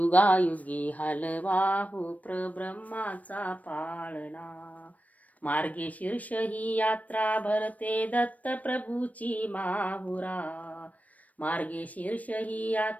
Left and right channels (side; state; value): right; late; 0.071 ms